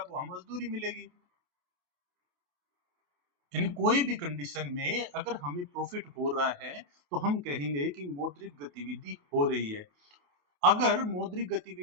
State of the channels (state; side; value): late; left; 28 ms